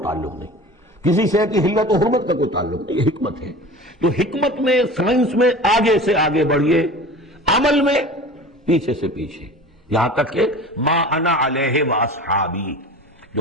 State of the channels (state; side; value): normal; both; correlation 0.37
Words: تعلق نہیں، کسی شے کی حلت و حرمت کا کوئی تعلق نہیں، یہ حکمت ہے. تو حکمت میں، سائنس میں آگے سے آگے بڑھیے، عمل میں پیچھے سے پیچھے، یہاں تک کہ ما انا علیہ واصحابی،